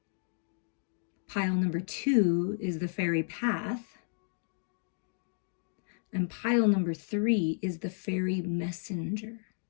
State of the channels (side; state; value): right; silent; digital silence